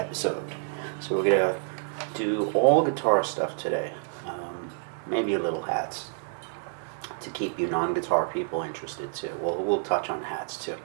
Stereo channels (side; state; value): left; silent; digital silence